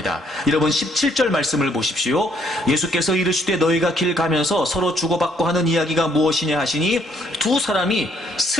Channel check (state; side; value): normal; both; correlation 0.67